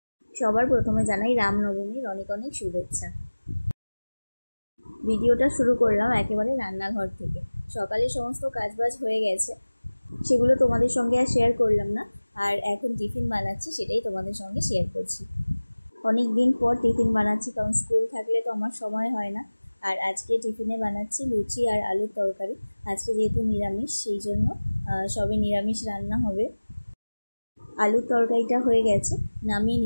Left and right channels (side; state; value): both; inverted; correlation -1.00